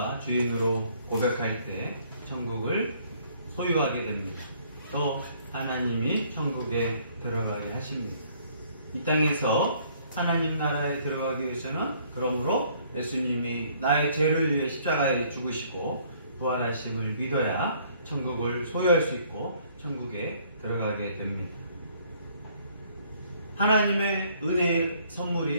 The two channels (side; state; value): both; inverted; correlation -0.62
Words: 주인으로 고백할 때 천국을 소유하게 됩니다. 또 하나님이 천국에 들어가게 하십니다. 이 땅에서 하나님 나라에 들어가기 위해서는 그러므로 예수님이 나의 죄를 위해 십자가에 죽으시고 부활하심을 믿어야 천국을 소유할 수 있고 천국에 들어가게 됩니다. 하나님의 은혜의